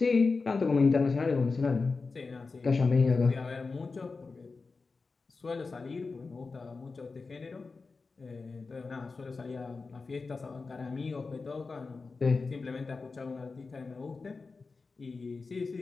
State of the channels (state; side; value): quieter; right; 4.2 dB